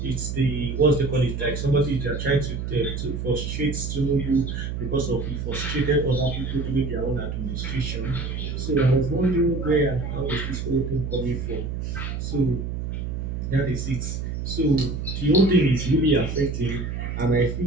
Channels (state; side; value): noise; right; hum, 4 dB below the sound